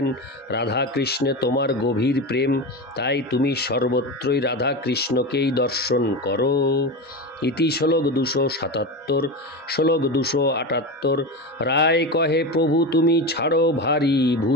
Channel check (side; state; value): both; normal; correlation 0.22